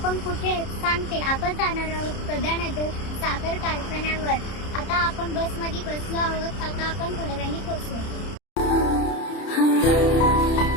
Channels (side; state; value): right; late; 30 ms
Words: पण कुठे सांगते, आपण जाणार आहोत प्रधानगर साखर कारखान्यावर. आता आपण बसमध्ये बसलो आहोत. आता आपण थोड्या वेळाने पोहोचू.